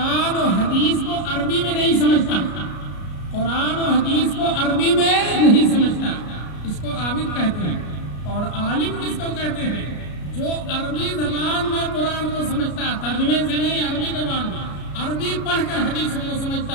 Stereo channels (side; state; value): right; late; 33 ms